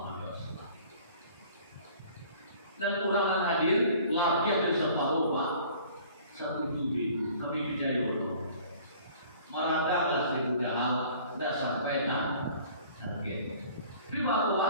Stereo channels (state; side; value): inverted; both; correlation -0.51